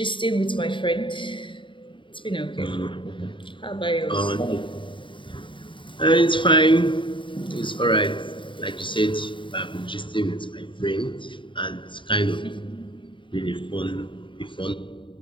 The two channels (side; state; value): right; late; 0.24 ms